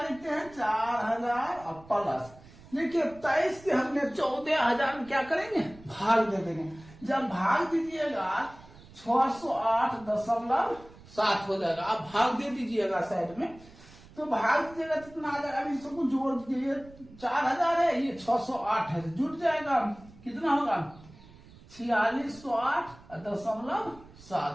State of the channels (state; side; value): noise; right; rumble, 22 dB below the sound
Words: लिखते हैं? 4000 और प्लस, देखिए 23 से हमने 14000 में क्या करेंगे? भाग दे देंगे। जब भाग दीजिएगा 608.7 हो जाएगा। आप भाग दे दीजिएगा साइड में, तो भाग दीजिएगा कितना आ जाएगा? अभी सबको जोड़ दीजिए। 4000 है, ये 608 है, जुट जाएगा। कितना होगा? 4608.7।